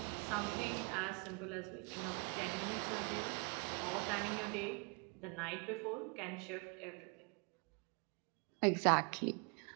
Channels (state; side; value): quieter; left; 33.9 dB